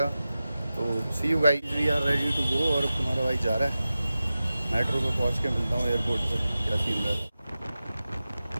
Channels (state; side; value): inverted; both; correlation -0.94